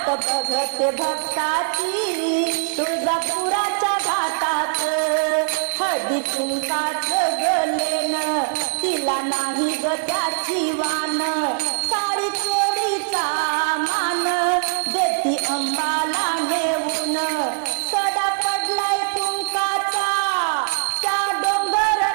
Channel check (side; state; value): left; silent; digital silence